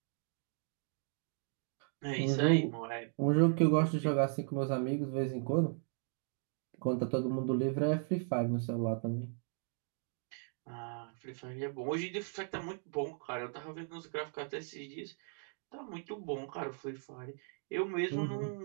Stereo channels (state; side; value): silent; left; 53 dB below the other